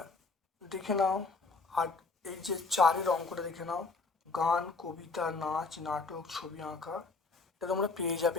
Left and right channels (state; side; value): quieter; right; 4.0 dB